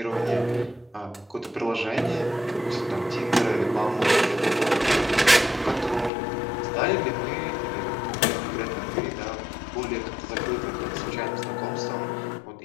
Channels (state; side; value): drops out; right; at 6.1 s